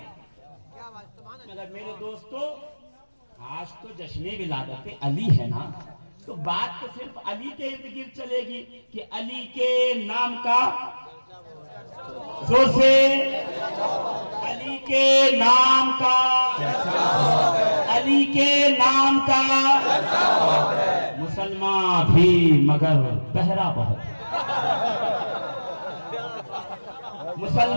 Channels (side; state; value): both; inverted; correlation -1.00